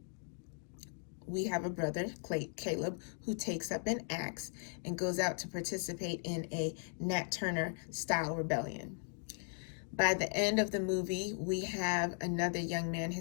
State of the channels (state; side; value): silent; right; 53 dB below the other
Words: we have a brother, Caleb, who takes up an axe and goes out to participate in a Nat Turner style rebellion. By the end of the movie, we have another young man.